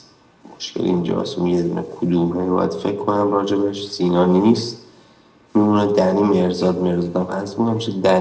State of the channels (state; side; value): identical; both; correlation 1.00